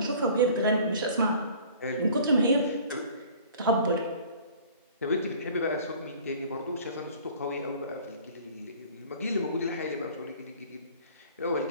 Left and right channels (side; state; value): both; inverted; correlation -0.48